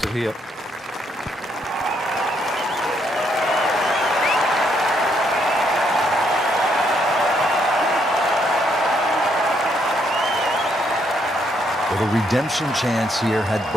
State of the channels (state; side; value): normal; both; correlation 0.73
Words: it here. With a redemption chance here, had